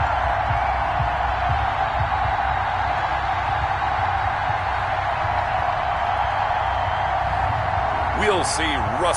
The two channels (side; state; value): both; identical; correlation 1.00